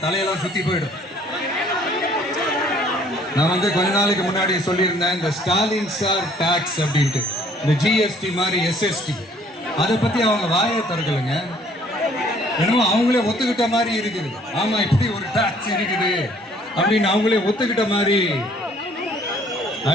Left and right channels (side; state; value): both; normal; correlation 0.59